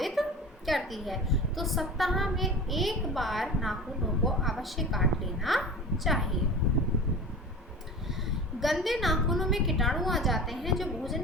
करती है। तो सप्ताह में एक बार नाखूनों को अवश्य काट लेना चाहिए। गंदे नाखूनों में कीटाणु आ जाते हैं जो भोजन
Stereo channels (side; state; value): both; normal; correlation 0.35